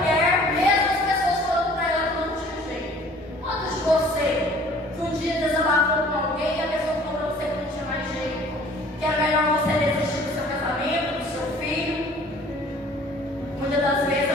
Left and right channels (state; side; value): normal; both; correlation 0.51